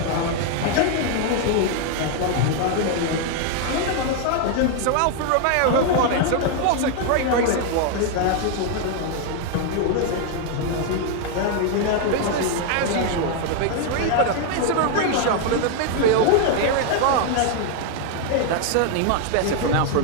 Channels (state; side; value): different; both; correlation 0.01